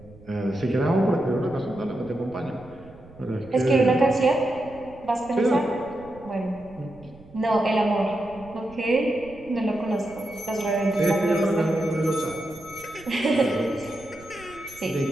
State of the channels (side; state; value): right; noise; rumble, 22 dB below the sound